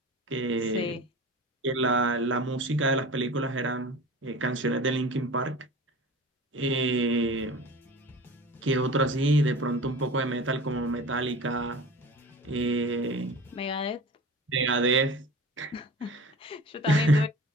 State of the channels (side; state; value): both; normal; correlation 0.38